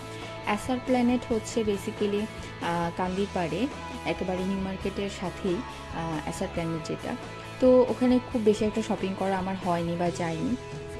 এসআর প্ল্যানেট বেসিক্যালি কান্দির পাড়ে একেবারে নিউ মার্কেটের সাথেই এসআর প্ল্যানেট যেটা। তো ওখানে খুব বেশি একটা শপিং করা আমার হয়নি বা যাইনি।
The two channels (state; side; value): identical; both; correlation 1.00